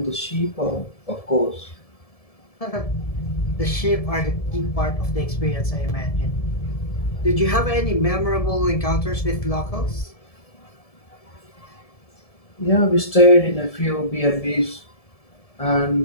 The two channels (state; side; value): late; right; 1.7 ms